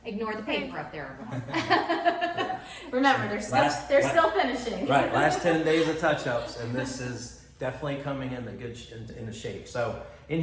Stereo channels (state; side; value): identical; both; correlation 1.00